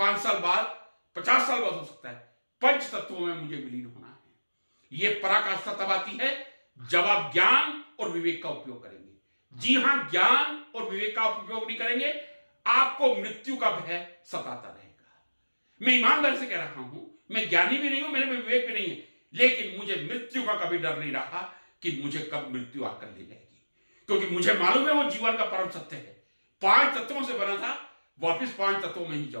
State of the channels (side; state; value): both; inverted; correlation -1.00